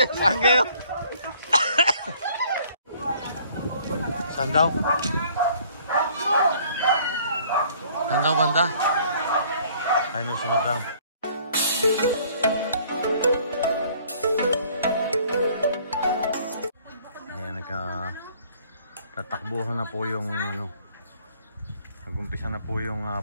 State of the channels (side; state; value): both; inverted; correlation -0.58